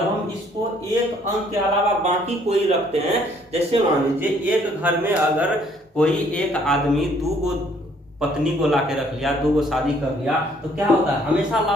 हम इसको एक अंक के अलावा बाकी कोई रखते हैं, जैसे मान लीजिए एक घर में अगर कोई एक आदमी 2 पत्नी को लाके रख लिया, 2 शादी कर लिया, तो क्या होता है, हमेशा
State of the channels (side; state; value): both; normal; correlation 0.63